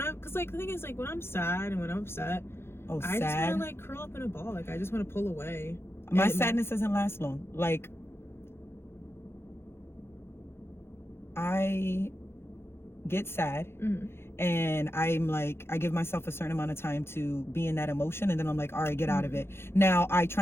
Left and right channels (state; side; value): late; right; 0.12 ms